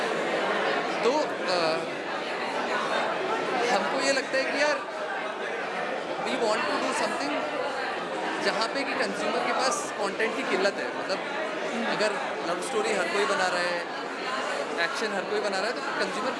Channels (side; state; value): both; identical; correlation 1.00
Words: तो हमको ये लगता है कि यार we want to do something जहाँ पे कि कंज्यूमर के पास कंटेंट की किल्लत है. मतलब अगर लव स्टोरी हर कोई बना रहा है, एक्शन हर कोई बना रहा है, तो कंज्यूमर